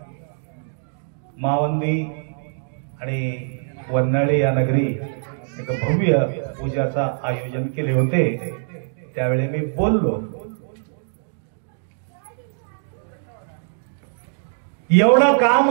मावंदी आणि वन्हाळी या नगरी एक भव्य पूजाचा आयोजन केले होते. त्यावेळी मी बोललो, एवढं का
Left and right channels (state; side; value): silent; left; digital silence